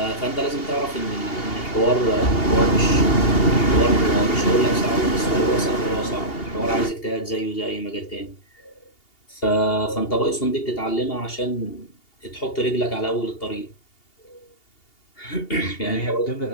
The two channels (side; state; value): right; late; 2.8 ms